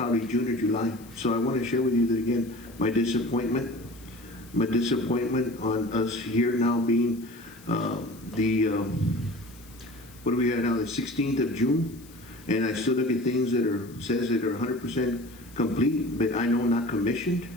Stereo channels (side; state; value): left; noise; hiss, 23 dB below the sound